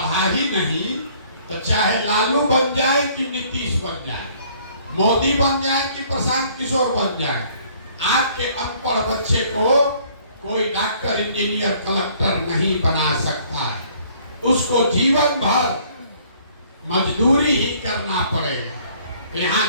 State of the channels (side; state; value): both; inverted; correlation -0.59